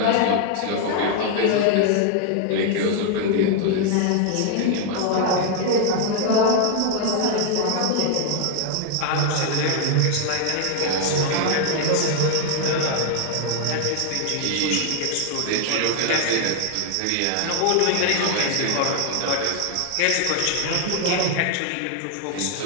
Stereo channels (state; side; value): different; both; correlation 0.00